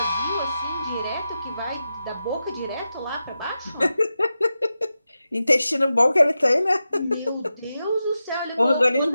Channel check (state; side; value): inverted; both; correlation -0.90